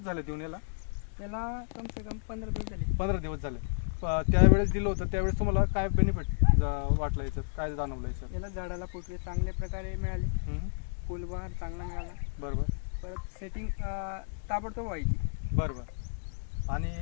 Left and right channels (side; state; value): right; silent; digital silence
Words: झाले देऊन याला? त्याला कम से कम 15 दिवस झाले. 15 दिवस झाले. त्यावेळेस दिलं होतं, त्यावेळेस तुम्हाला काय बेनिफिट वाटलं, याच्यात काय जाणवलं याच्यात? याला झाडाला फुटवे चांगल्या प्रकारे मिळाले, फुलबहार चांगला मिळाला. बरोबर. परत सेटिंग ताबडतोब व्हायची. बरोबर. आणि